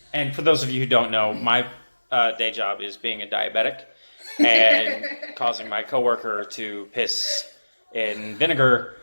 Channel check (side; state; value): both; inverted; correlation -1.00